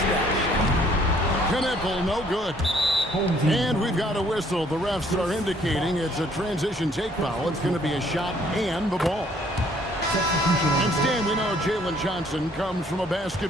that shot. Knipple, no good. And we've got a whistle. The refs are indicating it's a transition take foul. It's going to be a shot and the ball. And Stan, we know Jalen Johnson comes from a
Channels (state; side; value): normal; both; correlation 0.62